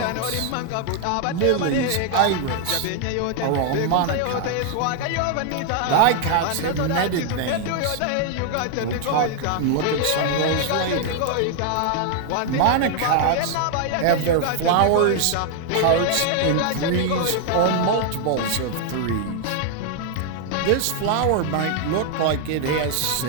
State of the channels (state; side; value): different; both; correlation 0.00